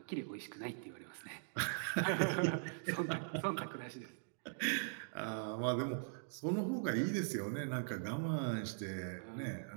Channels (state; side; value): silent; left; digital silence